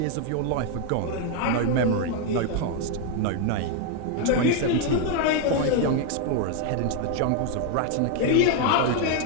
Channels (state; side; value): different; both; correlation 0.01